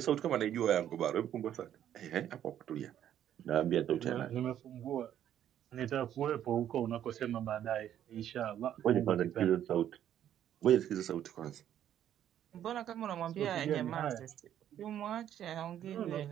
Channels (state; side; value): quieter; left; 10.7 dB